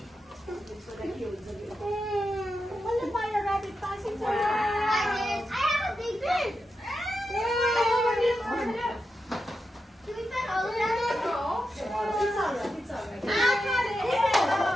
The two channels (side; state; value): both; normal; correlation 0.88